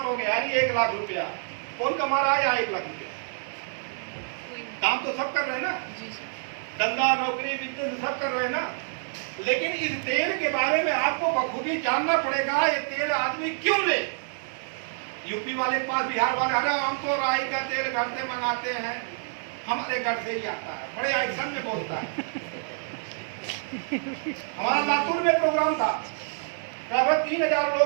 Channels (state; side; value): silent; left; 60 dB below the other